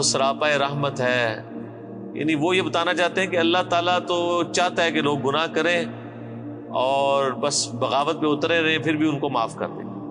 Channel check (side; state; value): both; identical; correlation 1.00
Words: سراپا رحمت ہے، یعنی وہ یہ بتانا چاہتے ہیں کہ اللہ تعالیٰ تو چاہتا ہے کہ لوگ گناہ کریں اور بس بغاوت پہ اترے رہے پھر بھی ان کو معاف کر دیں۔